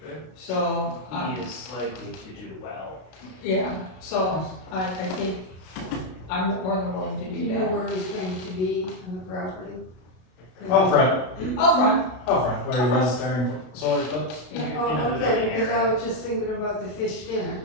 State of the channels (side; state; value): right; late; 32 ms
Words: So, He is likely to do well. yeah, so I think I'm more than willing to Do do you know that. where he's going to be on the property? Up front, Up front, where he was during solar eclipse. yeah. Oh, okay, because I was just thinking about the fish dinner.